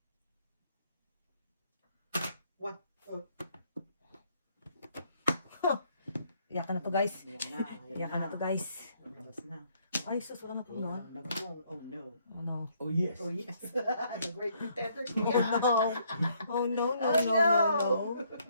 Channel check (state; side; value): inverted; both; correlation -0.68